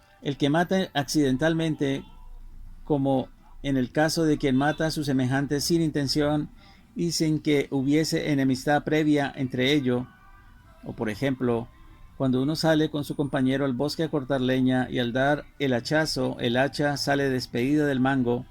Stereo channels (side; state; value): both; identical; correlation 1.00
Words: El que mata accidentalmente, como en el caso de quien mata a sus semejantes sin intención y sin que hubiese enemistad previa entre ellos, o por ejemplo, cuando uno sale con su compañero al bosque a cortar leña y al dar el hachazo, el hacha sale despedida del mango